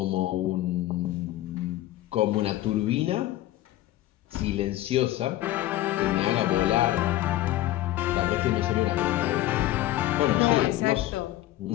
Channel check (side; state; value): right; quieter; 15.1 dB